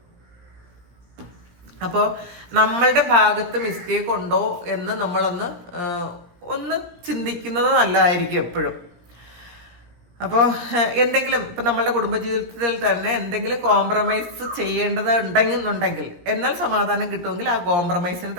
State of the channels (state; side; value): late; left; 17 ms